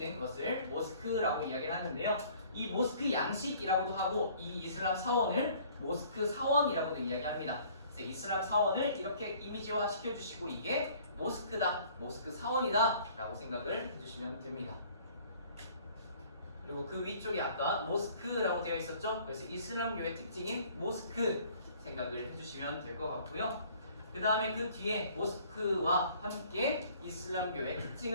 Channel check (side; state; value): both; inverted; correlation -0.55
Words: 것을 모스크라고 이야기를 하는데요. 이 모스크 양식이라고도 하고 이 이슬람 사원을 모스크 사원이라고도 이야기합니다. 그래서 이슬람 사원을 이렇게 이미지화 시켜주시고 이게 모스크다, 모스크 사원이다 라고 생각을 해주시면 됩니다. 그리고 그 위쪽에 아까 모스크라고 되어 있었죠. 그래서 이슬람교의 특징인 모스크 생각을 해주시면 될 것 같고요. 그 다음에 그 뒤에 모스크와 함께 이슬람교의